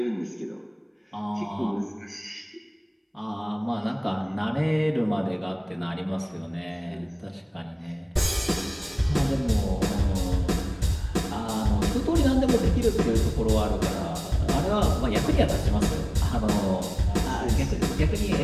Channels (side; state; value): both; identical; correlation 1.00